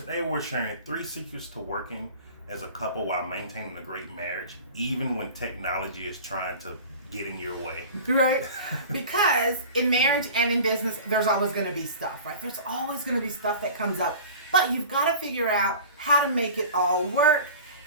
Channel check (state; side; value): inverted; both; correlation -0.39